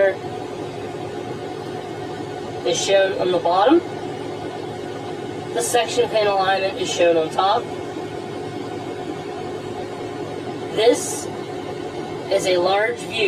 is shown on the bottom. The section pin alignment is shown on top. This is a large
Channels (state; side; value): identical; both; correlation 1.00